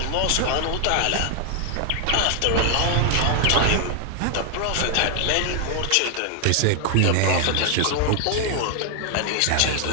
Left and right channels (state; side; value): different; both; correlation 0.00